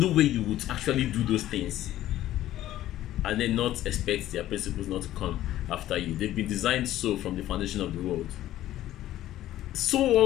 way you would actually do those things and then not expect their principles not to come after you. They've been designed so from the foundation of the world. So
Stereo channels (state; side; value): quieter; right; 13.7 dB